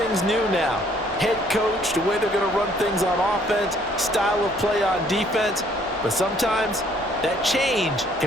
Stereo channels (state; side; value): normal; both; correlation 0.62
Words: new now. Head coach, the way they're going to run things on offense, style of play on defense, but sometimes that change